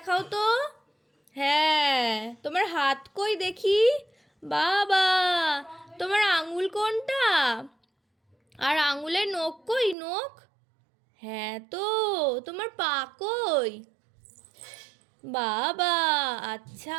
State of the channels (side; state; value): left; drops out; at 10.0 s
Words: তো। হ্যাঁ, তোমার হাত কই দেখি? বাবা, তোমার আঙুল কোনটা? আর আঙুলের নখ কই? নখ, হ্যাঁ তো, তোমার পা কই? বাবা,